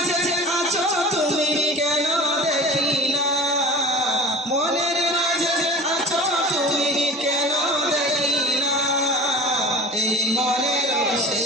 আছো তুমি কেন দেখি না, মনের মাঝে আছো তুমি কেন দেখি না। এই মনের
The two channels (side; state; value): both; normal; correlation 0.38